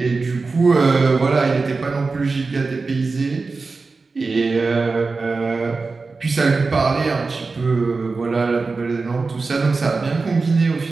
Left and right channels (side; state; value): left; quieter; 4.1 dB